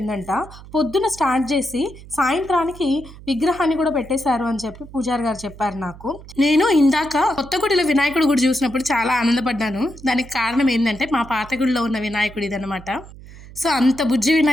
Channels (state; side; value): noise; right; hum, 18 dB below the sound